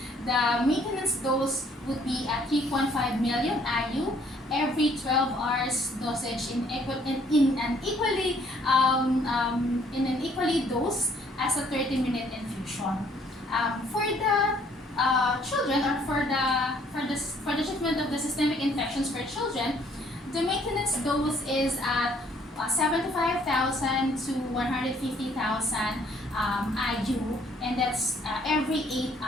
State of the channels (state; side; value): normal; both; correlation 0.63